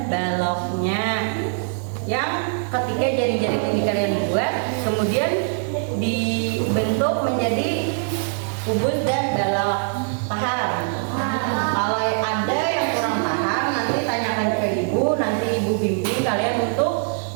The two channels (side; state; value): left; silent; digital silence